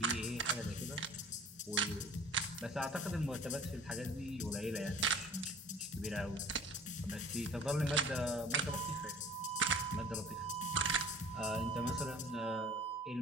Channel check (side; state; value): both; normal; correlation 0.47